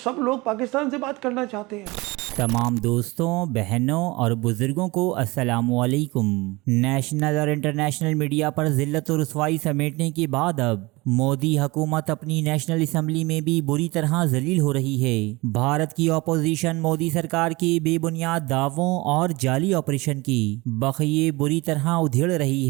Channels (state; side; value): quieter; left; 23.3 dB